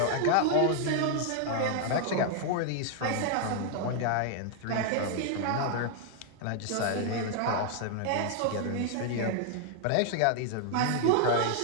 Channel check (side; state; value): both; different; correlation 0.00